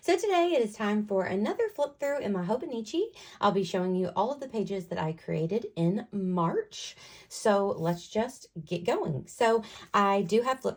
So today it is time for another flip through in my Hobonichi. I'll be showing you all of the pages that I created in March. So let's just get going. So I do have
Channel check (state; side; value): identical; both; correlation 1.00